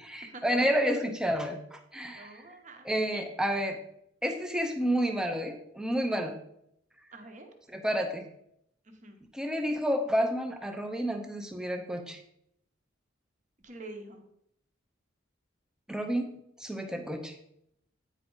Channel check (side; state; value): both; normal; correlation 0.78